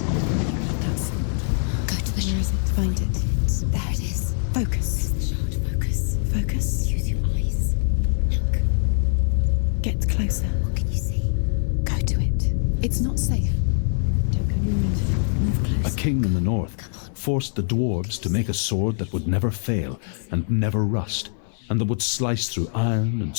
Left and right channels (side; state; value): right; silent; 58 dB below the other